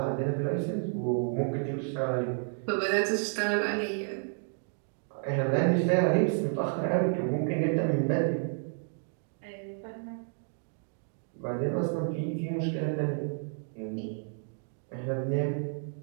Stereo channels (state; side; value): silent; left; 57 dB below the other